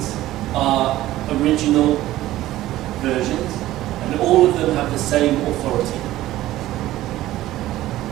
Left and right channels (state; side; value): quieter; left; 15.3 dB